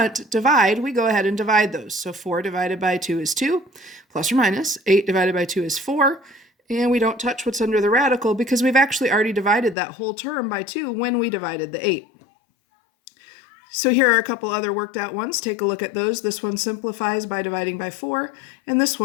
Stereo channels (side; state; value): right; drops out; at 9.8 s